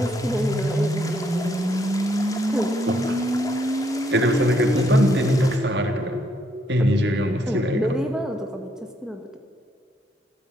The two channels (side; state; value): both; normal; correlation 0.73